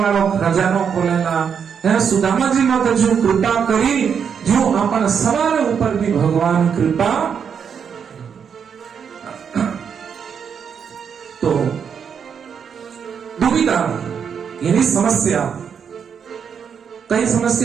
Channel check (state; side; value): quieter; left; 7.1 dB